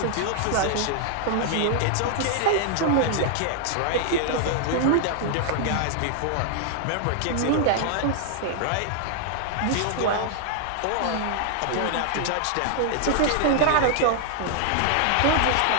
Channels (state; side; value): different; both; correlation 0.00